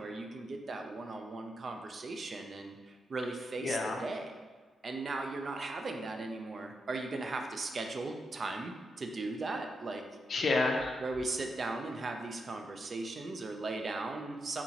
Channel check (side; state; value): both; normal; correlation 0.84